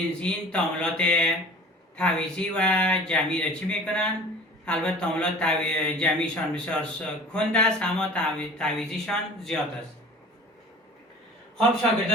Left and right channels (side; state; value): both; normal; correlation 0.43